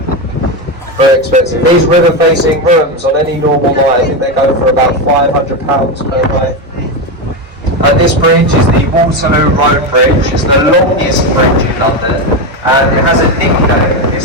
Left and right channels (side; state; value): both; normal; correlation 0.13